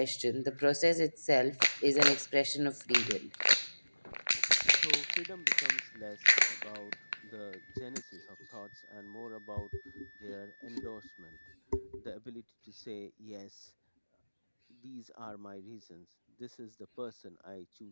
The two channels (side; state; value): both; inverted; correlation -1.00